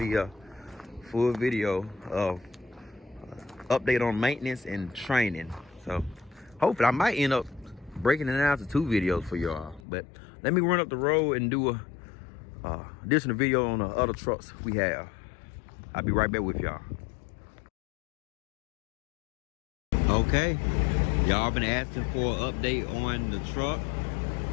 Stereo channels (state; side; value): drops out; right; at 9.8 s